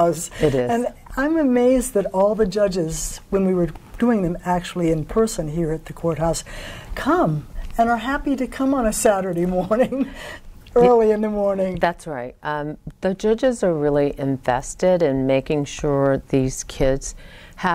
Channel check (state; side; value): identical; both; correlation 1.00